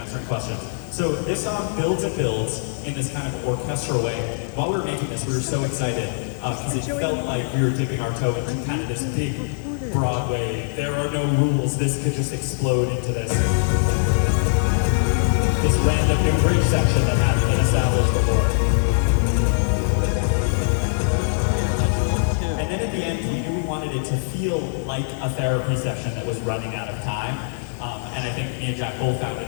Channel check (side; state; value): right; silent; 56 dB below the other